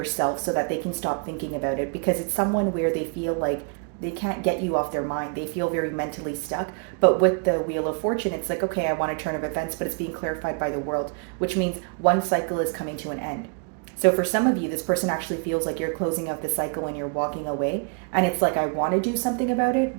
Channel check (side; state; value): left; quieter; 36.5 dB